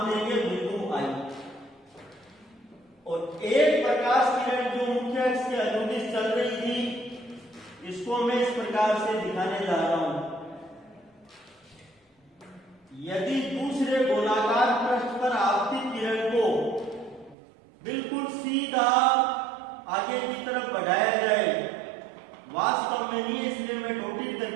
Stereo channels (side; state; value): left; drops out; at 17.4 s